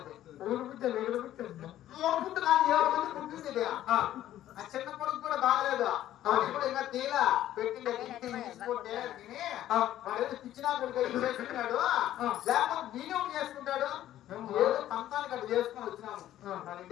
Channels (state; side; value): quieter; right; 12.8 dB